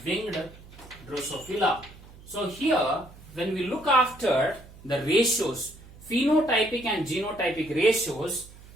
winged Drosophila. So here when we look after the ratios, phenotypic and genotypic ratios,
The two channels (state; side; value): noise; right; hum, 20 dB below the sound